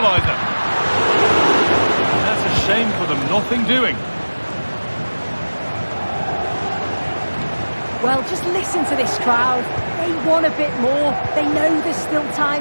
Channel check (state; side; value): inverted; both; correlation -1.00